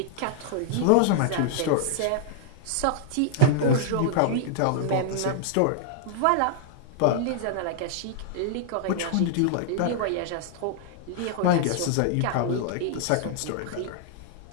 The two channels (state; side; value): different; both; correlation -0.01